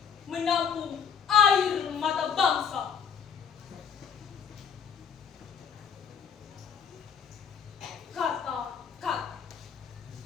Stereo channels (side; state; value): right; quieter; 7.2 dB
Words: menampung air mata bangsa. Kata-kata